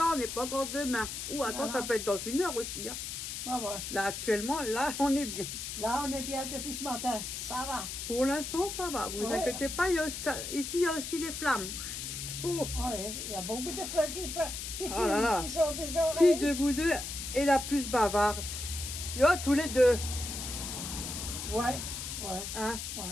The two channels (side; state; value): left; noise; hiss, 6 dB below the sound